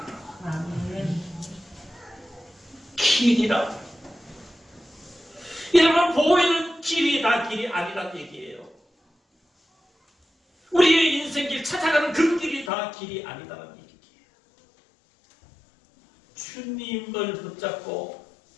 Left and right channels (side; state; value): right; drops out; at 12.7 s